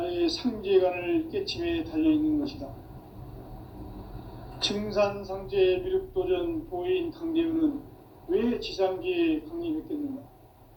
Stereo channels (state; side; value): identical; both; correlation 1.00